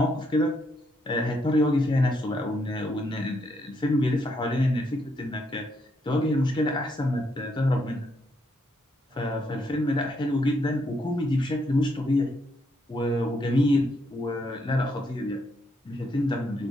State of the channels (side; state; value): both; normal; correlation 0.76